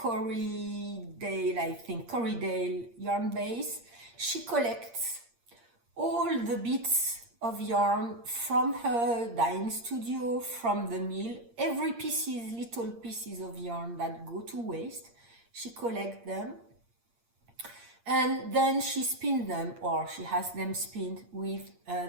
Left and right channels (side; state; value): left; late; 8.6 ms